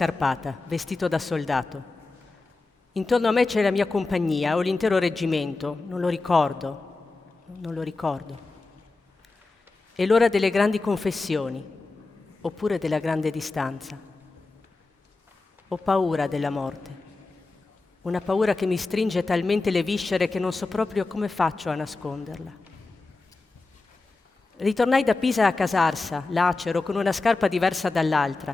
vestito da soldato. Intorno a me c'è la mia compagnia o l'intero reggimento, non lo ricordo. È l'ora delle grandi confessioni, oppure della grande distanza. Ho paura della morte, una paura che mi stringe talmente le viscere che non so proprio come faccio a nasconderla. Ritornai da Pisa a Casarsa, lacero, con una scarpa diversa dall'altra,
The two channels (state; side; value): quieter; right; 3.5 dB